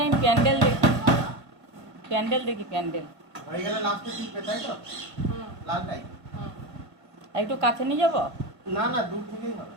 আমি প্যান্ডেল দেখি, প্যান্ডেল দেখি, প্যান্ডেল। হয়ে গেলে লাস্টে টিপবে, তাই তো? লালটাই। আর একটু কাছে নিয়ে যাবো? না না, দূর থেকেই হবে।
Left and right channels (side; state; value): left; late; 1.5 ms